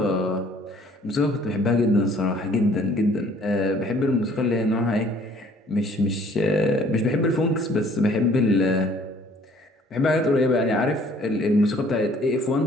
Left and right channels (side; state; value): both; normal; correlation 0.57